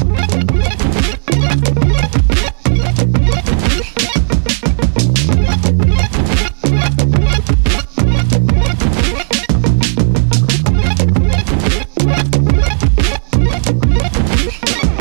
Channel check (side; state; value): left; silent; digital silence